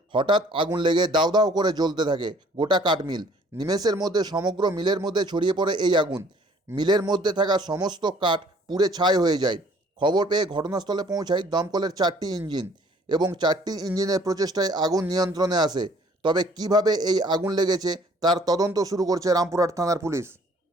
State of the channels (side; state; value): both; normal; correlation 0.57